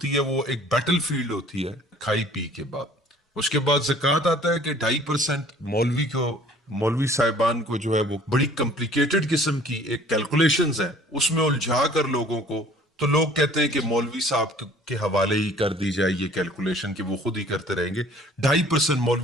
ہے وہ ایک بیٹل فیلڈ ہوتی ہے کھائی پی کے بعد۔ اس کے بعد زکوٰۃ آتا ہے کہ 2.5% مولوی صاحبان کو جو ہے وہ بڑی کمپلیکیٹڈ قسم کی ایک کیلکولیشنز ہے، اس میں الجھا کر لوگوں کو، تو لوگ کہتے ہیں کہ مولوی صاحب کے حوالے ہی کر دی جائے یہ کیلکولیشن کہ وہ خود ہی کرتے رہیں گے۔ 2.5%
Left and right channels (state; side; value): normal; both; correlation 0.52